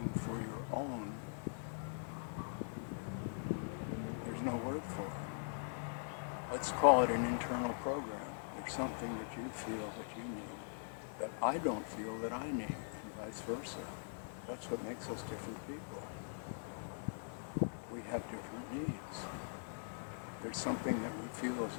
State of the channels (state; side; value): silent; right; digital silence